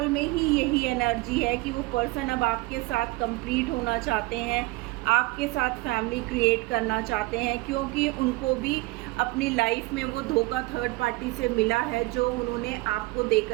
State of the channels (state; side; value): quieter; left; 22.0 dB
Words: में ही यही एनर्जी है कि वो पर्सन अब आपके साथ कंप्लीट होना चाहते हैं, आपके साथ फैमिली क्रिएट करना चाहते हैं, क्योंकि उनको भी अपनी लाइफ में वो धोखा थर्ड पार्टी से मिला है जो उन्होंने आपको दे